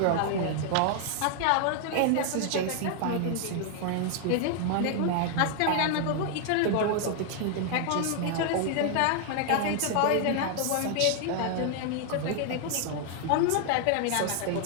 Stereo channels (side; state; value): both; different; correlation 0.00